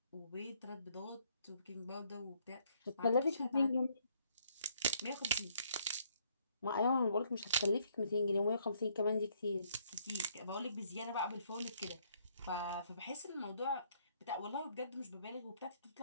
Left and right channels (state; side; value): inverted; both; correlation -0.67